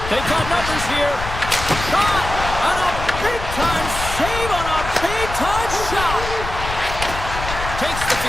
They've got numbers here. Shot! On a big-time save on a big-time shot. Takes the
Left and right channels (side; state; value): left; noise; rumble, 7 dB below the sound